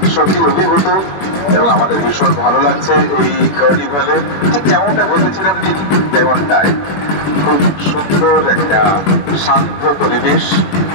সত্যি অভিভূত এবং আমাদের ভীষণ ভালো লাগছে এই কার্নিভালে। ঠিক যেমনটা বলেছিলাম ঠিক তেমনটাই খুব সুন্দর একটা শান্ত পরিবেশ।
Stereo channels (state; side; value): late; right; 21 ms